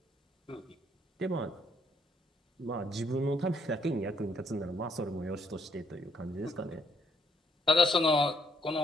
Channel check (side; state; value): both; normal; correlation 0.70